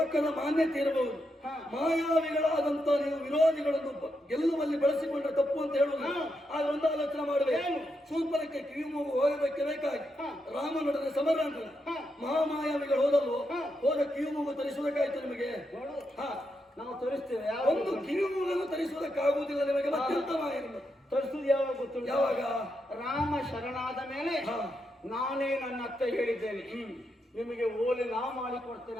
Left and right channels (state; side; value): normal; both; correlation 0.83